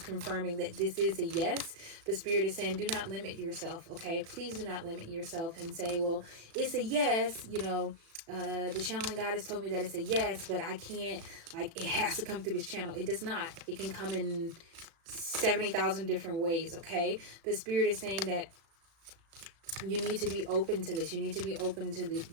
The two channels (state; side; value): late; left; 36 ms